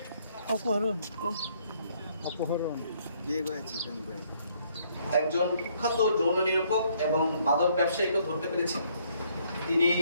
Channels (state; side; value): inverted; both; correlation -0.67